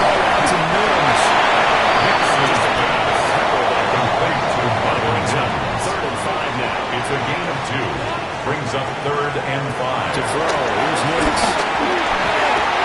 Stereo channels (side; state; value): both; identical; correlation 1.00